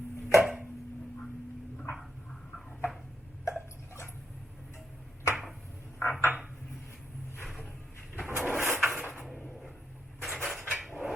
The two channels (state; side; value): normal; both; correlation 0.82